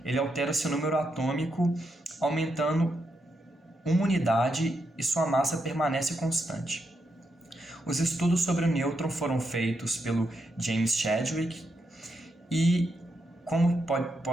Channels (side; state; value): both; normal; correlation 0.82